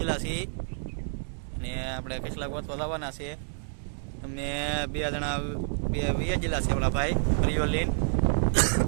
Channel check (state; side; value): silent; left; digital silence